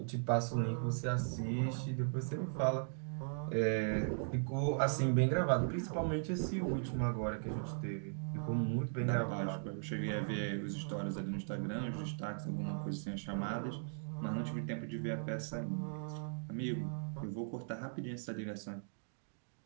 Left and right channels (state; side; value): silent; left; digital silence